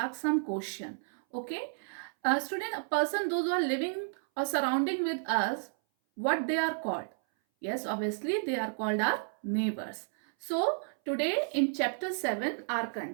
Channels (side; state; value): left; silent; 57 dB below the other